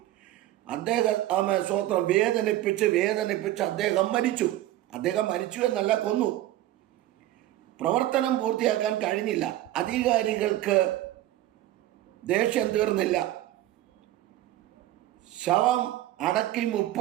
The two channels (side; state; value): left; quieter; 14.5 dB